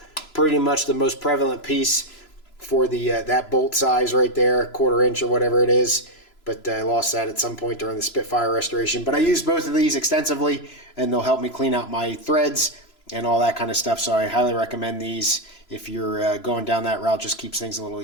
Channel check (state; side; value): late; right; 3.0 ms